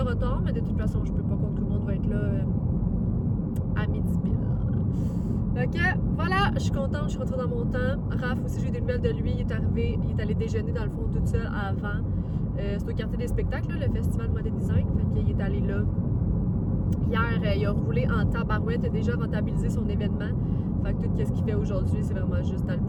mais de toute façon, je peux pas croire que tout le monde va être là à midi pile. Fait que voilà, je suis contente, je suis rentrée dans mon temps. Raph aussi, j'ai eu des nouvelles de lui, il est arrivé, il est allé déjeuner dans le fond toute seule avant. C'est au quartier des spectacles, là, le festival Model Design. Fait qu'il est allé là. Hier, il a roulé en tabarouette, il a déjà rentabilisé son événement. Fait que tout ce qu'il fait aujourd'hui, c'est vraiment juste dans le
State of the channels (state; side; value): identical; both; correlation 1.00